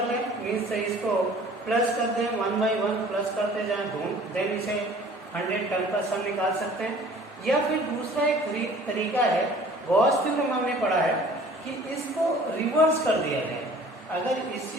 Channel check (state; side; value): normal; both; correlation 0.50